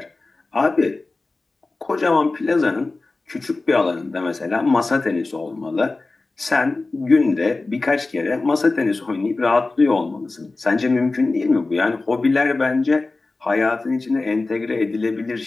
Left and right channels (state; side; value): quieter; right; 3.4 dB